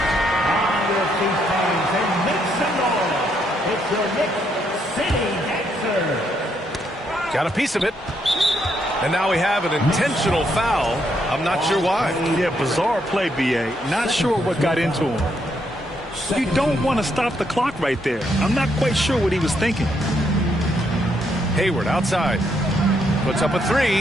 Got a piece of it. And now we have an intentional foul. I'm not sure why. Yeah, bizarre play, B.A. Not sure what got into him. You don't want to stop the clock right there. I'm not quite sure what he was thinking. Hayward outside. Puts up a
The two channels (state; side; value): normal; both; correlation 0.75